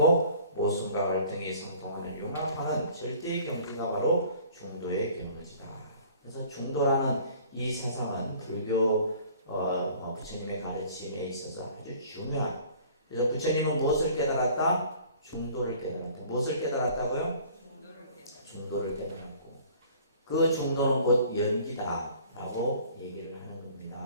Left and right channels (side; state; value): both; inverted; correlation -0.50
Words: 모순과 갈등이 상통하는 융합하는 절대의 경지가 바로 중도의 경지다. 그래서 중도라는 이 사상은 불교 부처님의 가르침에 있어서 아주 중요한. 그래서 부처님은 무엇을 깨달았다? 중도를 깨달았다. 무엇을 깨달았다고요? 중도를 깨달았고, 그 중도는 곧 연기다라고 얘기를 하는